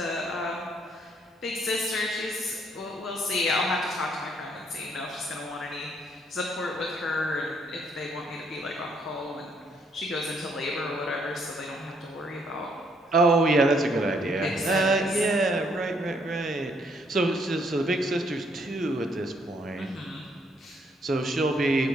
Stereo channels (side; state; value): both; normal; correlation 0.69